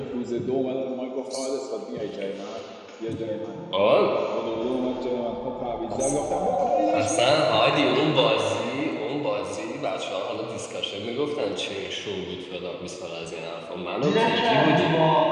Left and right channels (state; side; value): identical; both; correlation 1.00